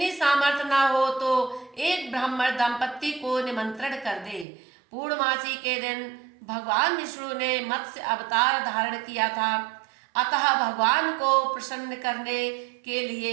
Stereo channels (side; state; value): left; drops out; at 4.5 s